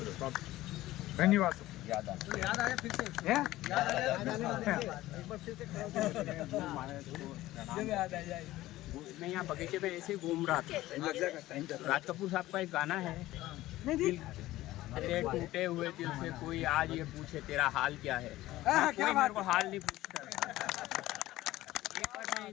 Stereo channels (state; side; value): quieter; right; 16.3 dB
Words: धन्यवाद। याद आ तो याद आया फिर से याद आ जाए एक बार फिर से याद आ जाए। मैं यहाँ बगीचे में ऐसे घूम रहा था। राज कपूर साहब का एक गाना है, दिल तेरे टूटे हुए दिल से कोई आज ये पूछे तेरा हाल क्या है। कोई मेरे को हाल नहीं पूछता। एक बार मैं